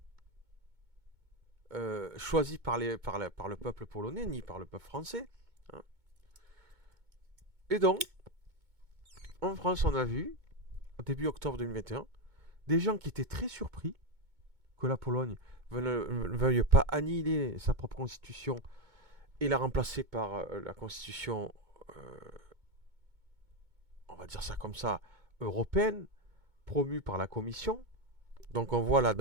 choisie par le peuple polonais ni par le peuple français. Hein. Et donc, en France, on a vu, au début octobre 2021, des gens qui étaient très surpris que la Pologne ne veuille pas annihiler sa propre constitution et la remplacer par la constitution, on va dire ça comme ça, européenne, promue par la Commission. Donc on voit là dans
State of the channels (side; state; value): left; late; 2.2 ms